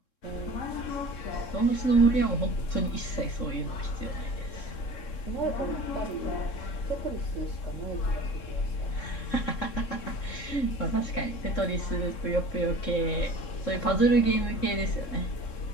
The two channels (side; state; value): right; late; 3.7 ms